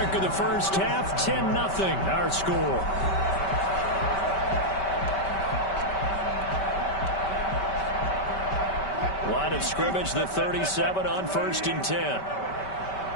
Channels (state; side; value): late; right; 5.2 ms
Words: of the first half. 10-0 our score. Line of scrimmage, the 37 on 1st and 10.